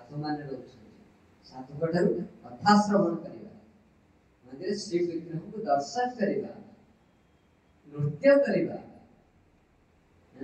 माने रहउछ साधु कठारु कथा श्रवण करिवा मंदिर श्री विग्रह को दर्शन करिवा नृत्य करिवा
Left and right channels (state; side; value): identical; both; correlation 1.00